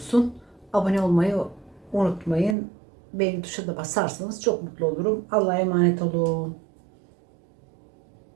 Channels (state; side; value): drops out; left; at 2.6 s